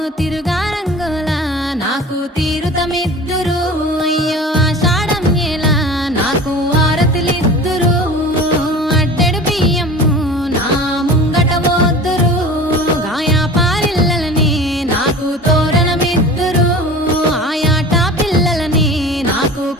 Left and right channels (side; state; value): both; normal; correlation 0.38